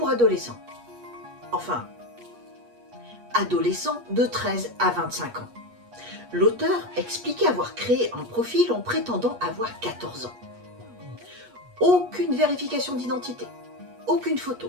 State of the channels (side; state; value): left; late; 8.3 ms